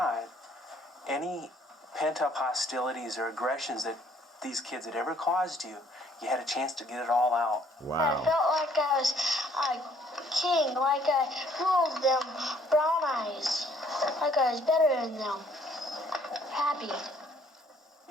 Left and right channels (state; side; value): normal; both; correlation 0.62